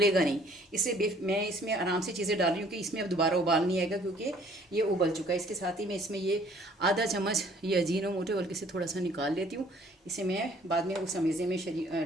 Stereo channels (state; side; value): normal; both; correlation 0.58